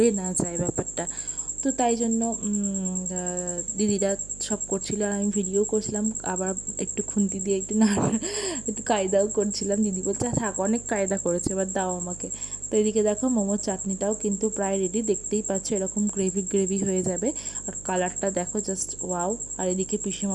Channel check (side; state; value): right; noise; hum, 17 dB below the sound